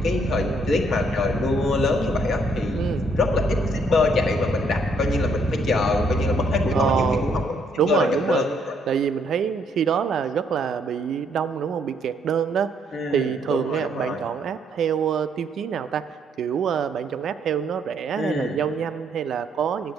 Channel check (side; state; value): both; normal; correlation 0.70